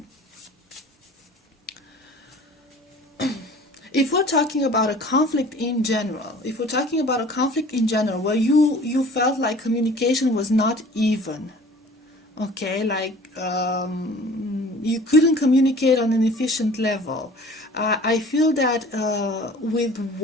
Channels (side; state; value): both; normal; correlation 0.47